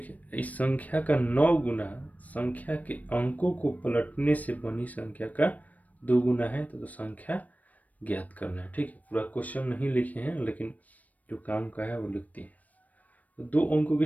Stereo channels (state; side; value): late; right; 0.074 ms